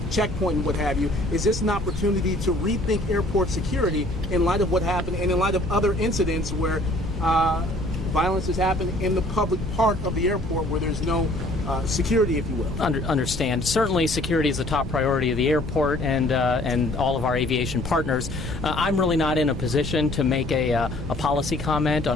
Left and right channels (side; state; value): left; noise; rumble, 9 dB below the sound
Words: checkpoint and what have you. Is this an opportunity to rethink airport security in light of what happened and in light of other incidents where violence has happened in the public part of the airport where there's no security, if you will? Understand. Certainly, security is a top priority of the airport and all of our aviation partners. I'm really not in a position to make a policy comment